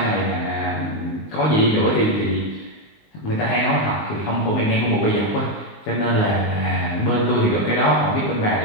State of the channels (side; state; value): right; late; 19 ms